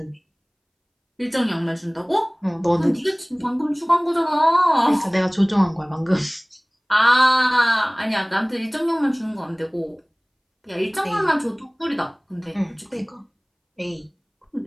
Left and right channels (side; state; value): both; identical; correlation 1.00